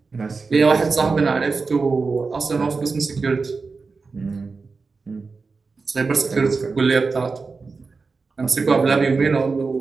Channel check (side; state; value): left; quieter; 4.4 dB